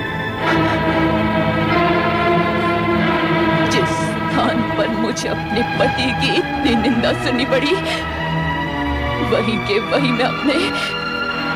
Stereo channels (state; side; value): identical; both; correlation 1.00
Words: जिस स्थान पर मुझे अपने पति की इतनी निंदा सुननी पड़ी, वहीं के वहीं मैं अपने